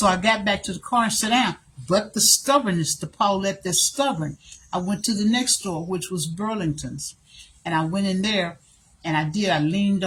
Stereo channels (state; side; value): identical; both; correlation 1.00